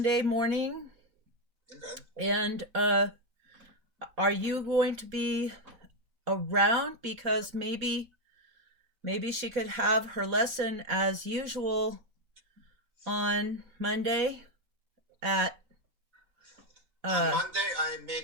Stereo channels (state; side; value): late; left; 4.1 ms